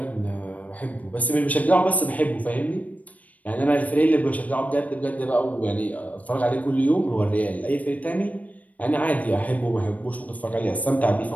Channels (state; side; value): late; right; 0.072 ms